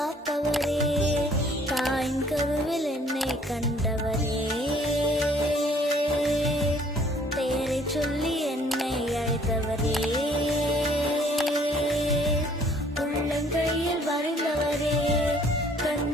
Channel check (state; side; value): normal; both; correlation 0.59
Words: தாயின் கருவில் என்னை கண்டவரே, பெயரை சொல்லி என்னை அழைத்தவரே, உள்ளங்கையில் வரைந்தவரே,